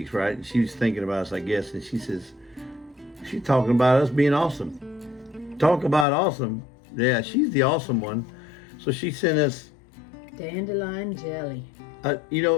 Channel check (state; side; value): drops out; right; at 6.1 s